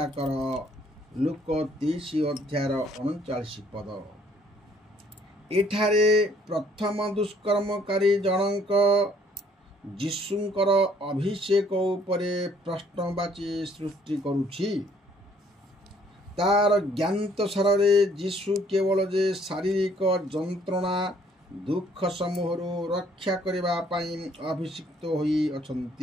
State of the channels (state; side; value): normal; both; correlation 0.62